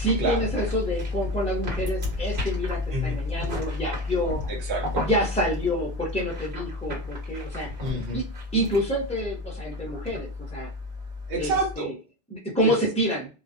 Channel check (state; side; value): normal; both; correlation 0.25